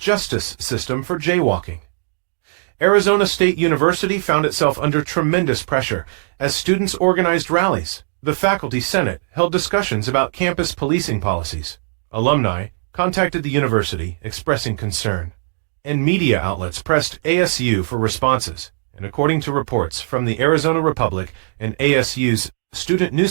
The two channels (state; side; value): silent; left; digital silence